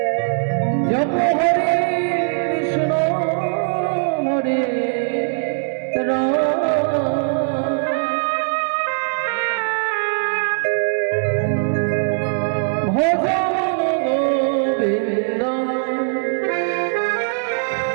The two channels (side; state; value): left; silent; 65 dB below the other